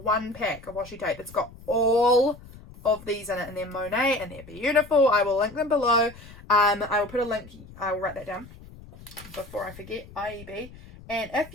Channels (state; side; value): noise; left; rumble, 19 dB below the sound